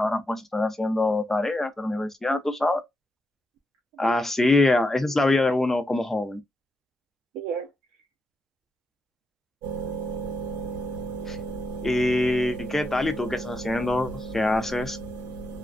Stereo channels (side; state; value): both; normal; correlation 0.84